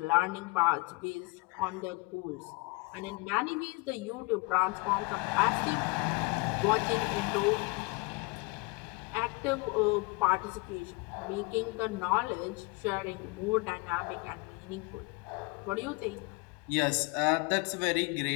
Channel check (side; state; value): right; quieter; 26.8 dB